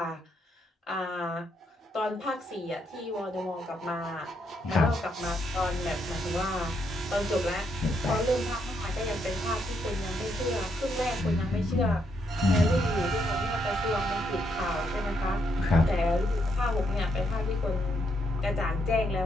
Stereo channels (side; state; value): both; normal; correlation 0.76